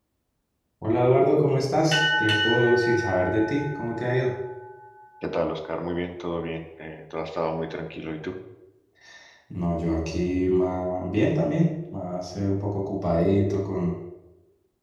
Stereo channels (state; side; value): identical; both; correlation 1.00